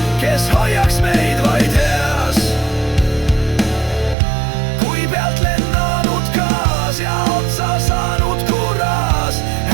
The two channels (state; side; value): drops out; left; at 4.2 s